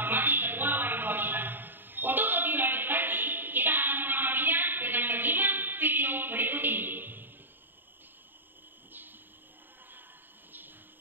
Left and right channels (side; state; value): left; late; 0.094 ms